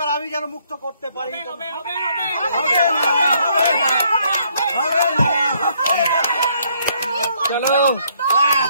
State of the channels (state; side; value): inverted; both; correlation -0.69